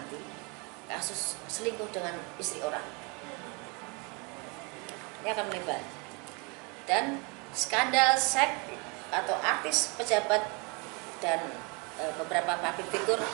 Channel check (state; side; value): quieter; left; 31.2 dB